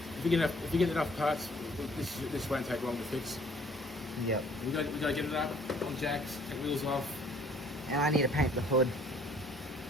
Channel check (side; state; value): both; normal; correlation 0.58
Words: If you get enough parts, this won't take long to fix. Yep. We got to get it up on jacks, take wheels off, And I need to paint the hood.